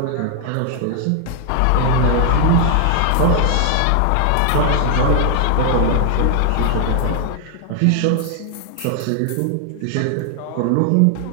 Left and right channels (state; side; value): different; both; correlation 0.00